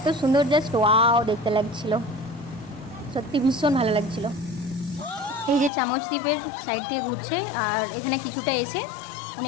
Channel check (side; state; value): right; drops out; at 5.7 s